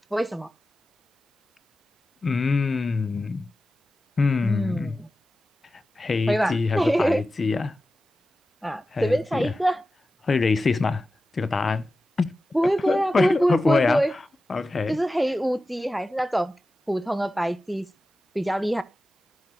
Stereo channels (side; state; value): both; normal; correlation 0.94